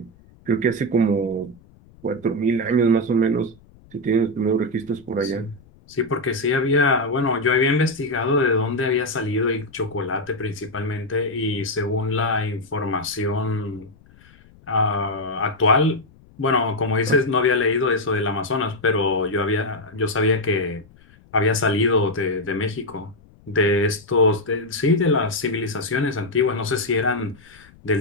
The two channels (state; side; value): noise; left; rumble, 27 dB below the sound